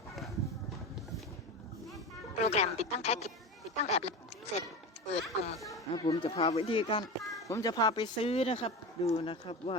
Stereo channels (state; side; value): normal; both; correlation 0.26